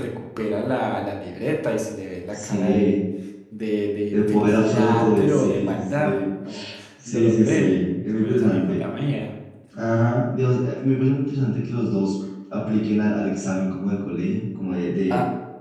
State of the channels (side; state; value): both; identical; correlation 1.00